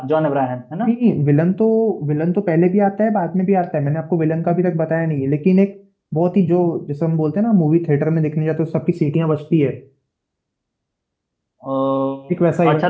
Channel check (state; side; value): identical; both; correlation 1.00